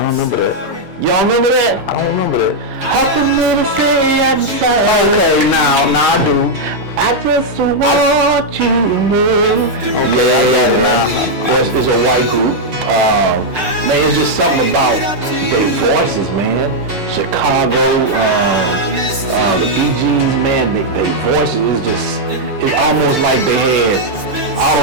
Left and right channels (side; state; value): left; late; 6.7 ms